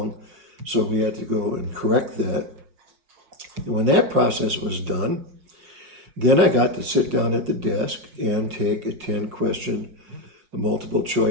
So we had to go and correct that. And when that process was done, then I got to sit down at the desk and take a 10-question, multiple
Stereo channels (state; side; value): late; left; 5.5 ms